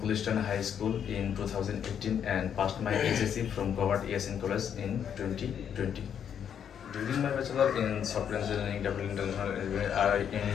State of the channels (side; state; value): right; quieter; 8.5 dB